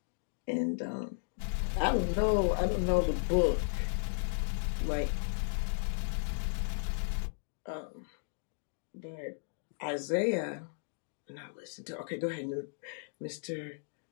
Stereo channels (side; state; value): right; silent; digital silence